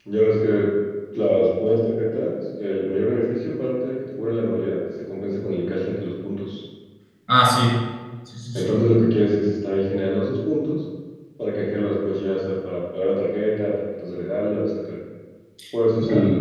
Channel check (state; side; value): identical; both; correlation 1.00